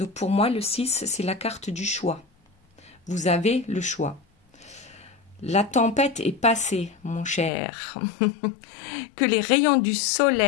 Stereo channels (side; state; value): right; drops out; at 7.5 s